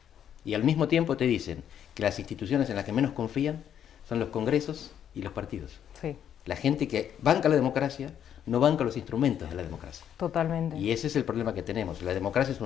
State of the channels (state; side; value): quieter; right; 9.5 dB